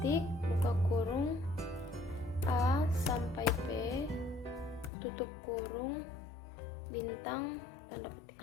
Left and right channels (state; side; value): drops out; right; at 4.9 s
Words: buka kurung A sampai P, tutup kurung bintang, tanda